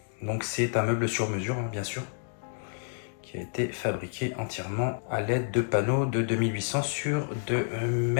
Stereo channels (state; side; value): silent; right; 58 dB below the other